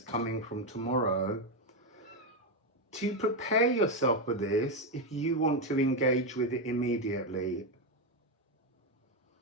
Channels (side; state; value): both; normal; correlation 0.07